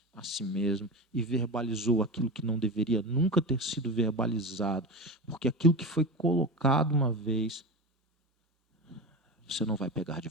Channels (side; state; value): both; normal; correlation 0.25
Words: a si mesmo e verbalizou aquilo que não deveria nunca ter sido verbalizado, porque aquilo que foi colocado uma vez, você não vai pegar de